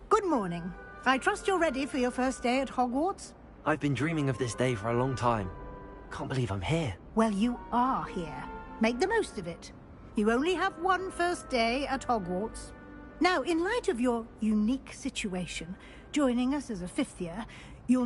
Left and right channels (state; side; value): identical; both; correlation 1.00